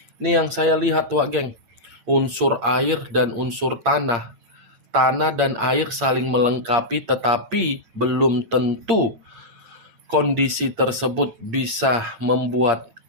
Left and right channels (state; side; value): late; left; 8.7 ms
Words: Ini yang saya lihat, Wak Geng. Unsur air dan unsur tanah. Tanah dan air saling melengkapi, tetapi belum tentu kondisi tersebut bisa membuat